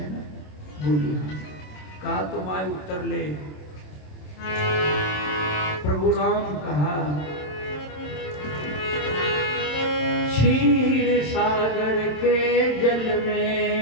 ना। बोली हाँ। कहा तो माय उत्तर ले। प्रभु राम कहा क्षीर सागर के जल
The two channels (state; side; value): late; right; 27 ms